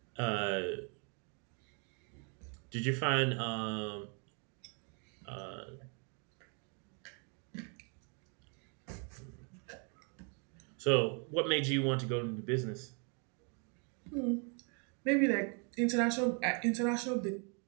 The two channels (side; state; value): left; quieter; 37.2 dB